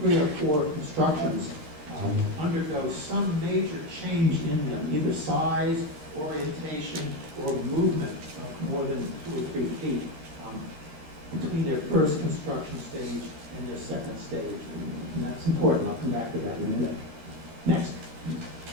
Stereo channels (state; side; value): late; left; 13 ms